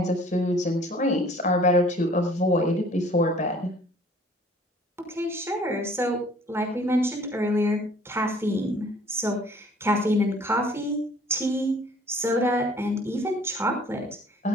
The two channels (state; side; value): normal; both; correlation 0.54